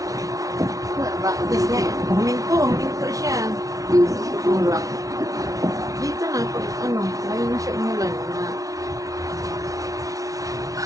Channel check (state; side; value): late; left; 0.17 ms